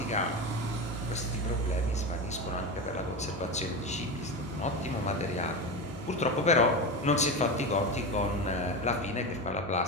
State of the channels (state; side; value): normal; both; correlation 0.20